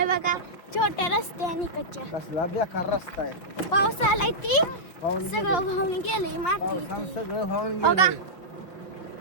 बघा छोट्या रस्त्याने कच्च्या. कसला बेकार रस्ता आहे. पाऊस आलाय ती पाहून सगळं वाहून गेलंय माती. पावसानं सगळं वाहून बघा. गेलं.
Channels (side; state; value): right; late; 5.8 ms